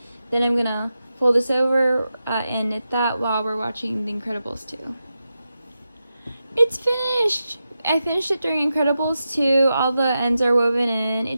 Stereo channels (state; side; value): inverted; both; correlation -0.89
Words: then I'm gonna fold this over and knit that while we're watching the Incredibles 2. It's finished! I finished it during Incredibles 2. All the ends are woven in.